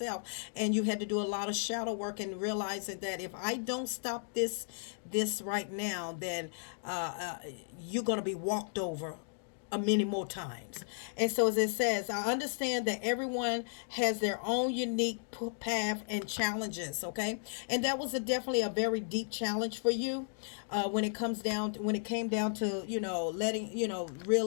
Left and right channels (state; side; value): silent; right; digital silence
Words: and you had to do a lot of shadow work, and realizing that if I don't stop this right now, then you're going to be walked over many more times. And so, as it says, I understand that everyone has their own unique path and challenges. Okay, and that was definitely a very deep challenge for you, when it came down to letting